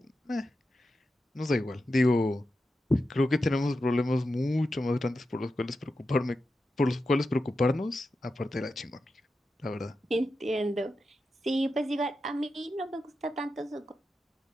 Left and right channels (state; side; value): normal; both; correlation 0.90